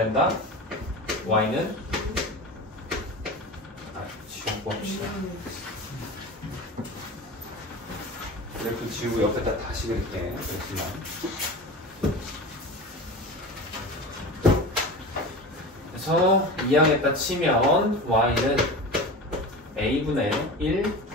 y는 지우고 합시다. 그래프 지우고 옆에다 다시 그릴게. 그렇지만 그래서 2항에다 치면 y는 a분의 1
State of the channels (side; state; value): both; normal; correlation 0.31